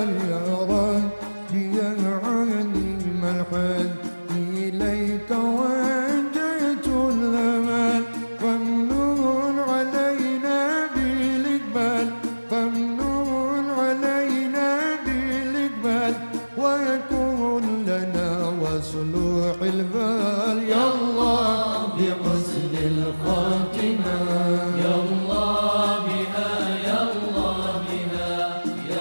يا ربي يا عليم الحال إليك وجهت الآن فامنون علينا بالإقبال فامنون علينا بالإقبال ويكون لنا وصلوح البال يا الله بحسن الخاتمة. يا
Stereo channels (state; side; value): inverted; both; correlation -1.00